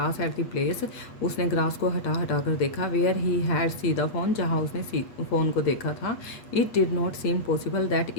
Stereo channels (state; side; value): late; right; 8.4 ms